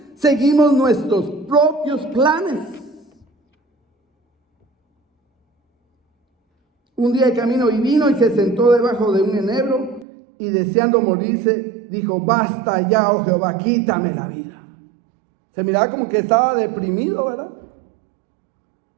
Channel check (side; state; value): left; drops out; at 10.1 s